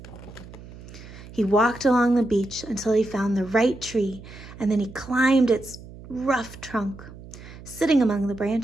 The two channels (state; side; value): noise; right; hum, 17 dB below the sound